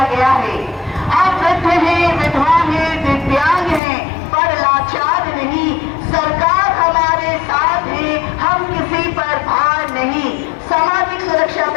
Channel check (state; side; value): drops out; right; at 3.8 s